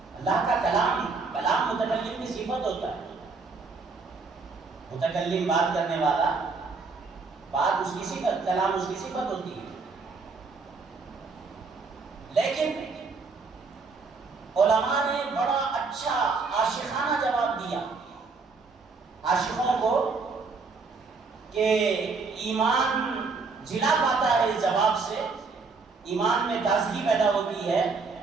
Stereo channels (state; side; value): quieter; left; 4.4 dB